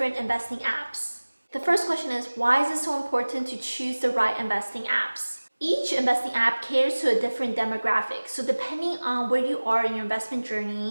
investing apps. The first question is, why is it so important to choose the right investing apps? Each investing app caters to a different demographic, so depending on where you are in your investment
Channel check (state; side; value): inverted; both; correlation -1.00